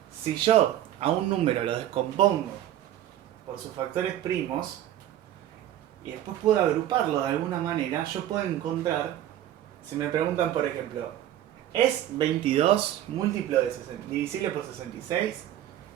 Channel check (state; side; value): quieter; left; 12.2 dB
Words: Si yo a un número lo descompongo por sus factores primos y después puedo agruparlo de alguna manera, yo puedo encontrar, si me preguntan por ejemplo, ¿es 22 múltiplo de divisible por 66?